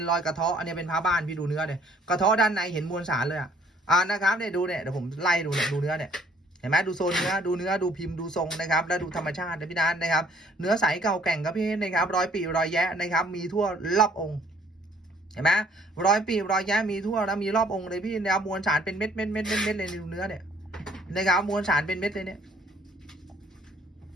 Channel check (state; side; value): normal; both; correlation 0.59